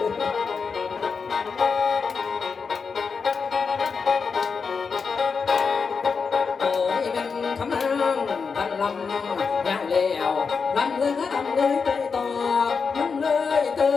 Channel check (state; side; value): quieter; right; 5.4 dB